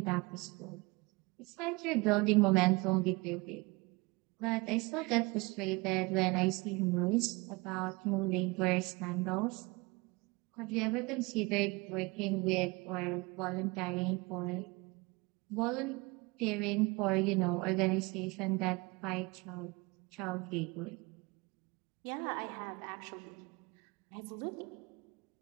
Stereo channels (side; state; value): left; quieter; 25.6 dB